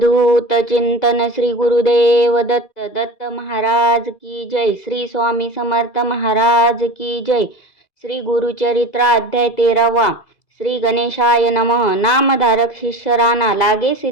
चिंतन श्री गुरुदेव दत्त दत्त महाराज की जय। श्री स्वामी समर्थ महाराज की जय। श्री गुरुचरित्र अध्याय 13वा। श्री गणेशाय नमः। नामधारक शिष्य राणा लागे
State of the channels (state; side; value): late; right; 2.4 ms